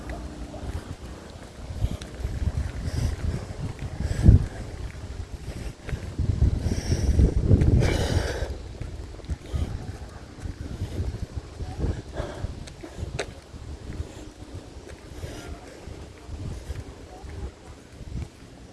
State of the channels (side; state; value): both; identical; correlation 1.00